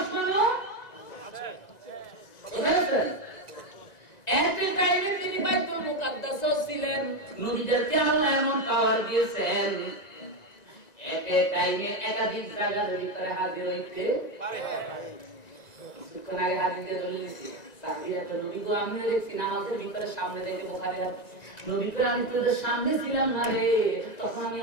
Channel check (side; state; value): right; late; 1.9 ms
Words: আছে। একই টাইমে তিনি বাইতুল মুকাদ্দাসও ছিলেন। নবীদেরকে আল্লাহ এমন পাওয়ার দিয়েছেন, একই টাইমে একাধিক জায়গার ভিতরে হাজির হইতে পারে। কিছুক্ষণ আগে হাদিসে দলিল দিছি, সাহাবীরা তো নবী গো আমি দেখছি নামাজের ভিতরে সামনে দেখে বুখারী নবী কই আমি তোদের সামনে ছিলাম না রে, তখন আমি